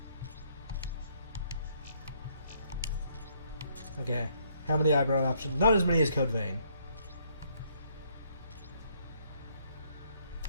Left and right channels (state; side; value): inverted; both; correlation -0.69